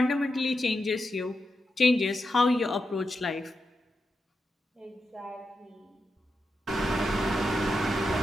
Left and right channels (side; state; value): both; normal; correlation 0.87